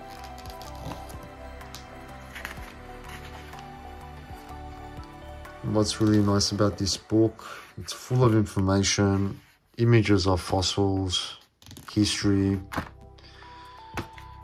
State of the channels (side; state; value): both; identical; correlation 1.00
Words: And what's really nice about this book, it's full of information, images of fossils, history.